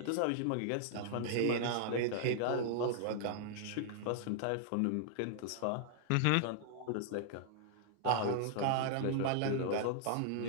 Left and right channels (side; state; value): both; different; correlation -0.01